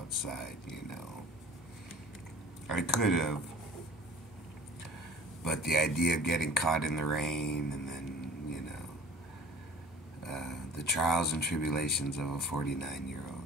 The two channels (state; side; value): normal; both; correlation 0.45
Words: I could have, but the idea of getting caught in the rain and then the trials and tribulations of a 49-year-old.